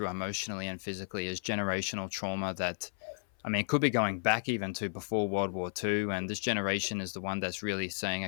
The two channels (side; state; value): right; silent; 55 dB below the other